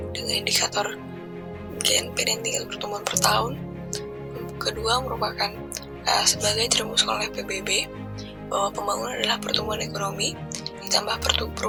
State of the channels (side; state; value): both; identical; correlation 1.00